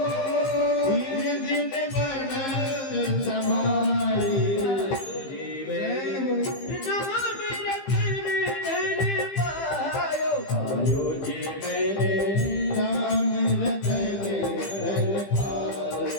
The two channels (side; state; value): right; late; 15 ms